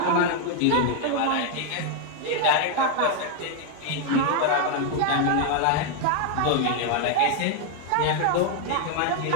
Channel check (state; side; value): different; both; correlation 0.00